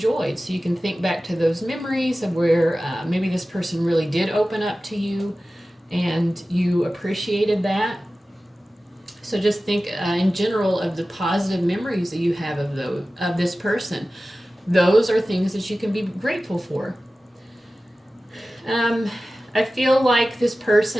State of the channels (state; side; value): normal; both; correlation 0.96